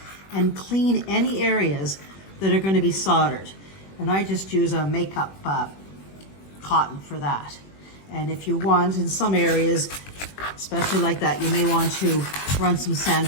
and clean any areas that are going to be soldered. And I just use a makeup cotton for that. And if you want, in some areas, especially like that, you may want to run some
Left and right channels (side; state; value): right; late; 21 ms